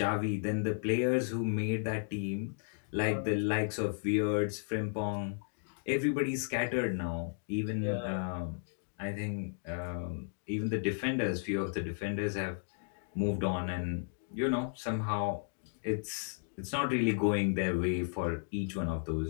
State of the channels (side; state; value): right; silent; digital silence